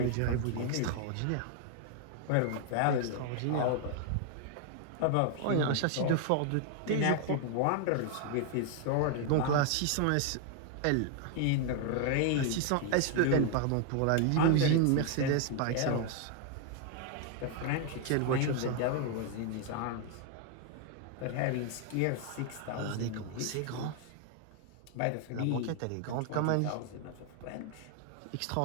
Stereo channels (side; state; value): both; different; correlation 0.00